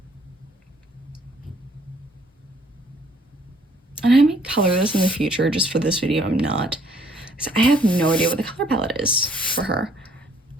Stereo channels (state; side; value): normal; both; correlation 0.62